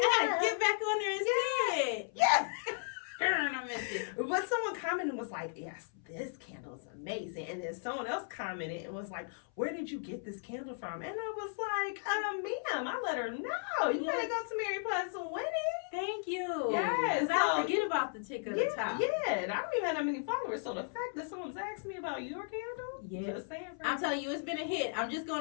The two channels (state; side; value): silent; right; 54 dB below the other